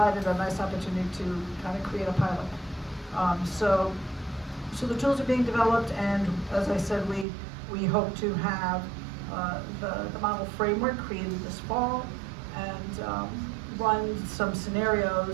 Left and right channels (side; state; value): left; drops out; at 7.2 s